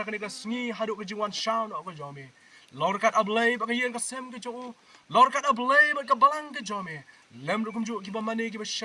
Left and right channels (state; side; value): identical; both; correlation 1.00